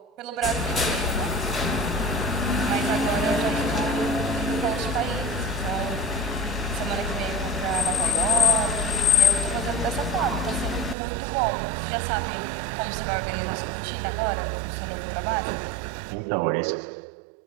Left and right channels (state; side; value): drops out; left; at 11.0 s